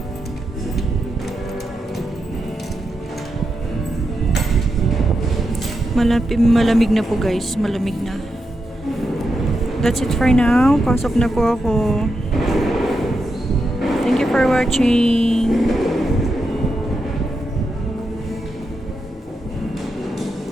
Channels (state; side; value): normal; both; correlation 0.86